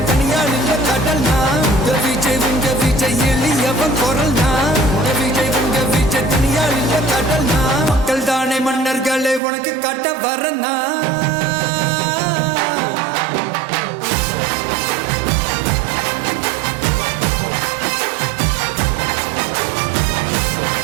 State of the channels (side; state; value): left; drops out; at 9.4 s